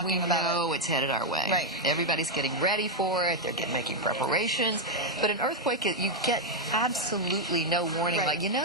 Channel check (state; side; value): normal; both; correlation 0.01